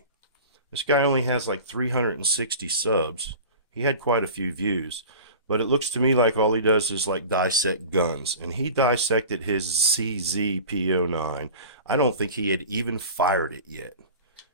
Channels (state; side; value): inverted; both; correlation -0.37